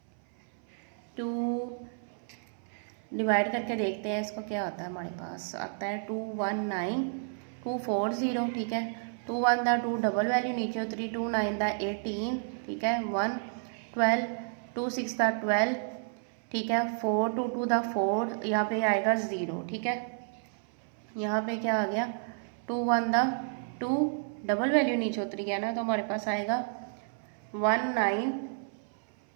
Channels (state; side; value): silent; left; 57 dB below the other